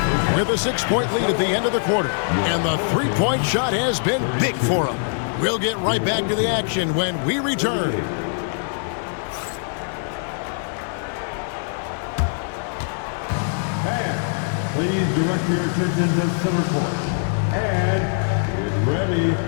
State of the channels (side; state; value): right; silent; digital silence